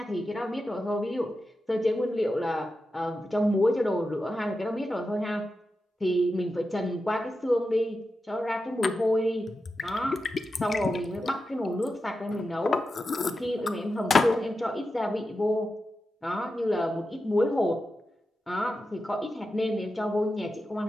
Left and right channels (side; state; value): both; normal; correlation 0.90